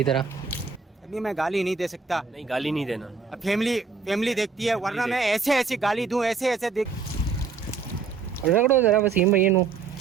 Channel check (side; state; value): left; quieter; 5.2 dB